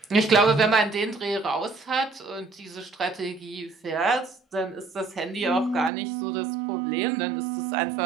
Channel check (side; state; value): left; drops out; at 5.9 s